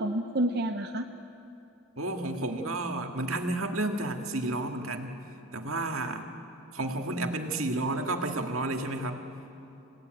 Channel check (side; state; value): both; normal; correlation 0.35